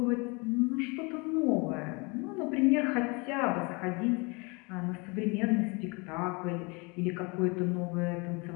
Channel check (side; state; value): right; quieter; 29.3 dB